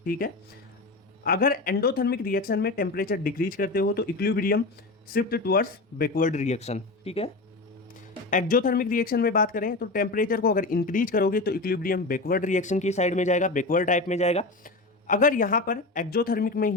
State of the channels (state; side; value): quieter; right; 3.2 dB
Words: ठीक है। अगर एंडोथर्मिक रिएक्शन में टेम्परेचर डिक्रीज करते हो तो equilibrium shift towards backward reaction, ठीक है। एक्जोथर्मिक रिएक्शन में बात करें तो टेम्परेचर को अगर इंक्रीज करोगे तो इक्विलिब्रियम बैकवर्ड रिएक्शन की साइड में जाएगा, बैकवर्ड टाइप में जाएगा। अगर यहाँ पर एक्जोथर्मिक में